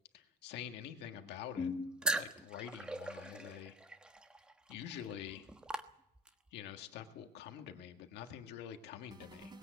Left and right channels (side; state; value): both; normal; correlation 0.36